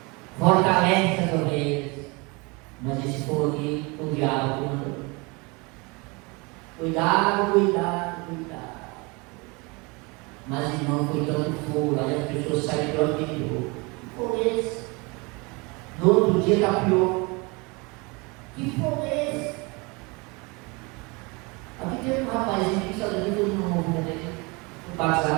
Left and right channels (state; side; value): quieter; left; 27.7 dB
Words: fortalece as ovelhas. Mas esse fogo aqui, o diabo mandou. Cuidado, cuidado, cuidado. Mas irmão, foi tanto fogo, aí as pessoas saem do anterior. Que fogo é esse? No outro dia está pior. Que fogo é esse? Aqui tem um rapazinho que está dando todo mundo na igreja, o